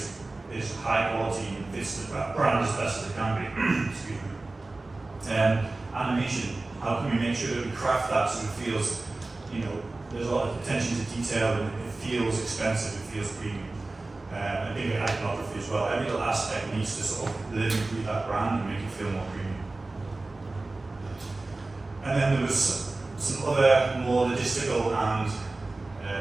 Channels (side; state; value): left; quieter; 3.2 dB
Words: it's high quality and fits the brand as best as it can be? Excuse me. Animation. How can we make sure that we craft that so it feels, there's a lot of attention to detail and it feels expensive, it feels premium. I think iconography as well. Every little aspect needs to sort of live and breathe that brand and make it feel more premium. And then there was some other more logistical and